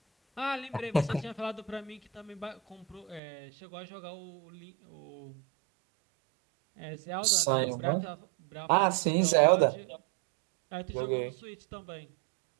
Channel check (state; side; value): drops out; left; at 3.2 s